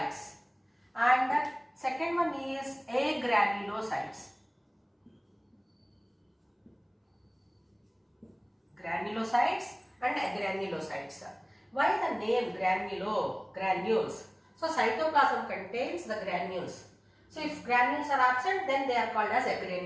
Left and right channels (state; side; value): identical; both; correlation 1.00